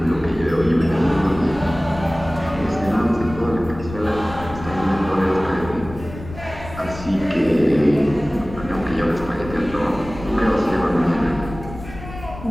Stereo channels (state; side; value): noise; left; rumble, 13 dB below the sound